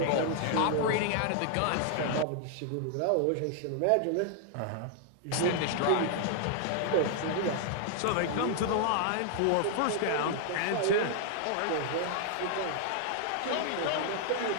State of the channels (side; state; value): both; different; correlation 0.00